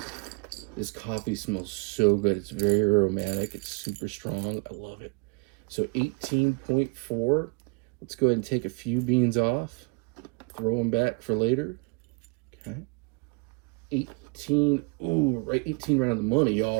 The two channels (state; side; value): quieter; left; 31.6 dB